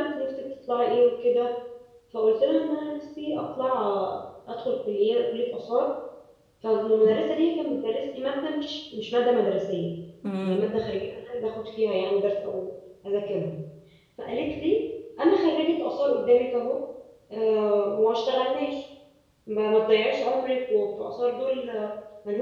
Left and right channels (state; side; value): identical; both; correlation 1.00